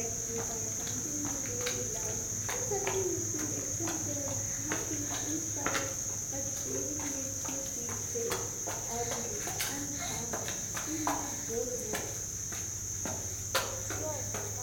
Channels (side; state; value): both; identical; correlation 1.00